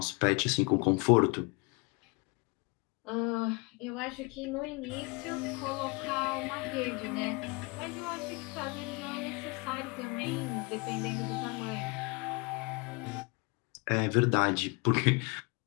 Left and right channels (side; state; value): right; quieter; 29.3 dB